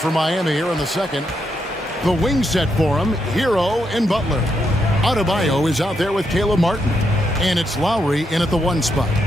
Miami here in the second. The wing set for him, Hero and Butler. Adebayo is out there with Caleb Martin. And it's Lowry in at the one spot.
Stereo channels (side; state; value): both; normal; correlation 0.80